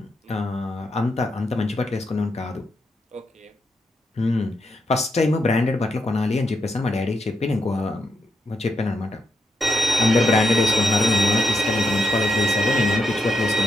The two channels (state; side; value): normal; both; correlation 0.80